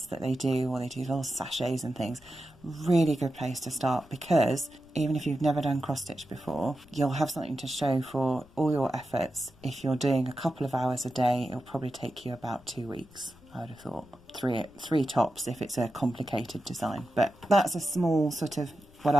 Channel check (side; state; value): left; noise; rumble, 27 dB below the sound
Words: that they do, or they do little sachets and things, really good place to start, because even if you've never done cross stitch before, you'll have something to show for all your efforts. If you're doing a couple of hours a day, it'll probably take you about 2 weeks. I would have thought three tops if it's a complicated design, but that's a small sort of what